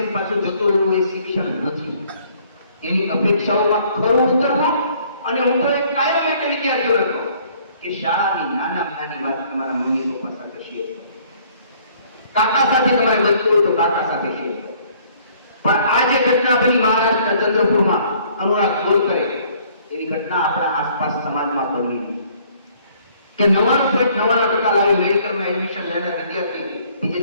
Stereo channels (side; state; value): both; inverted; correlation -0.60